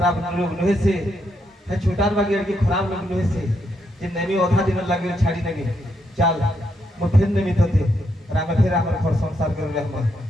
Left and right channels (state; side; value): normal; both; correlation 0.78